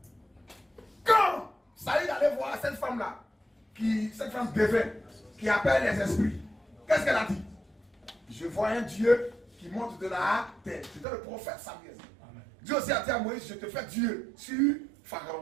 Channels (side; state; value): left; drops out; at 11.1 s